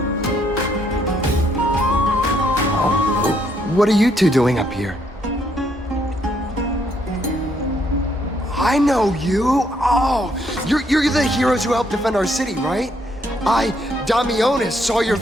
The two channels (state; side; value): normal; both; correlation 0.72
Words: What are you two doing up here? I know you. Oh, you're the heroes who helped defend our city, right? I, Damionis, saw your